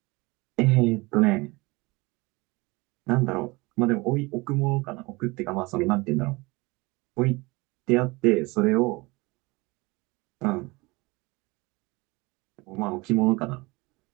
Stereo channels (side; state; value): left; quieter; 24.1 dB